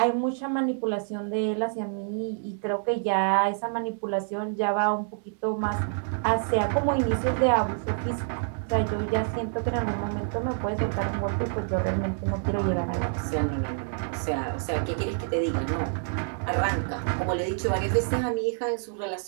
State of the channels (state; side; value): silent; left; digital silence